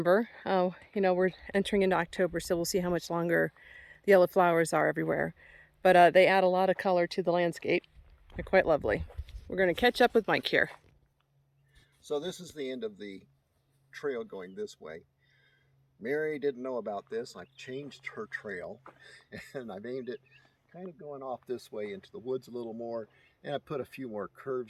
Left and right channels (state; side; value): identical; both; correlation 1.00